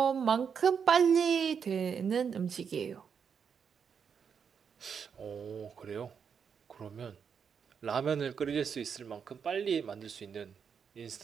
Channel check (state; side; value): quieter; left; 6.8 dB